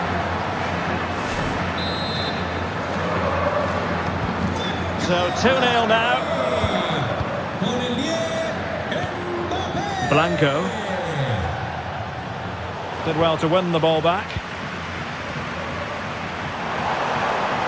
So 2-0 now. Blanco. Did well to win the ball back.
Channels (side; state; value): both; identical; correlation 1.00